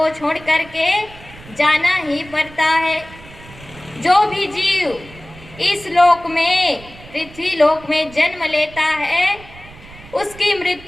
छोड़ करके जाना ही पड़ता है। जो भी जीव इस लोक में, पृथ्वी लोक में जन्म लेता है उसकी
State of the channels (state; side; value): noise; right; rumble, 20 dB below the sound